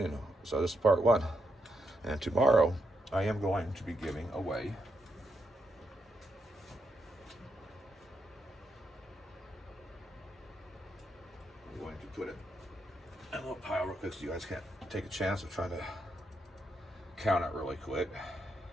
So this is part 1. And tomorrow, I am going to be giving away I'm going to put it in a little pile real quick so you guys can't take a chance of trying to count it really quick.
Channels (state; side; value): normal; both; correlation 0.81